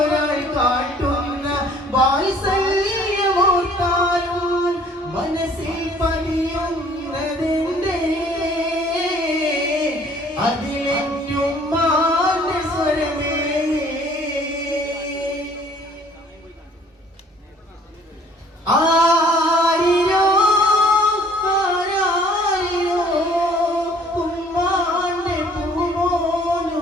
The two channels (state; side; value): normal; both; correlation 0.57